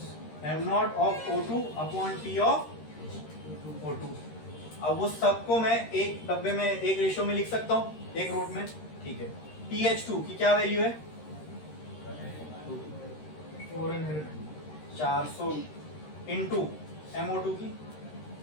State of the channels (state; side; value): late; right; 13 ms